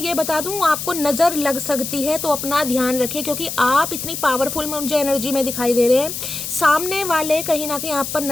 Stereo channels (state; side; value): noise; left; hiss, 6 dB below the sound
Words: बता दूं, आपको नज़र लग सकती है, तो अपना ध्यान रखिए, क्योंकि आप इतनी पावरफुल मुझे एनर्जी में दिखाई दे रहे हैं, सामने वाले कहीं ना कहीं आप पर